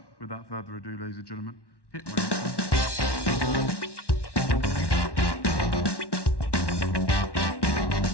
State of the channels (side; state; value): right; late; 1.1 ms